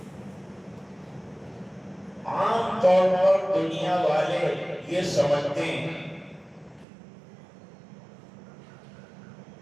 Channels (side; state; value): left; drops out; at 6.9 s